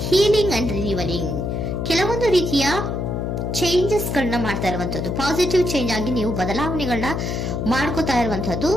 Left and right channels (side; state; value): left; noise; hum, 2 dB below the sound